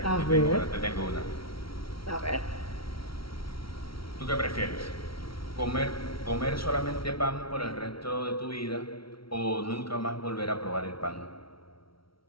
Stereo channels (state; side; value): late; right; 0.75 ms